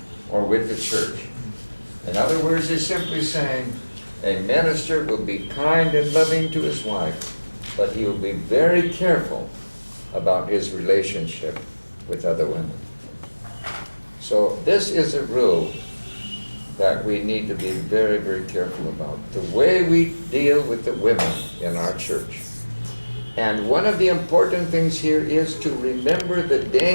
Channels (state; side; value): inverted; both; correlation -1.00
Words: or with the church. In other words, he's simply saying a minister will be kind and loving to his wife, but he will be very careful about his relationship with other women. So this is a rule that we need to be very, very careful about. The way we deal with the women in our church. And one of the important things here is to remember the